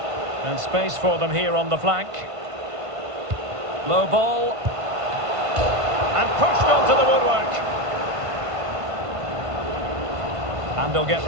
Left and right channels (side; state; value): left; late; 1.5 ms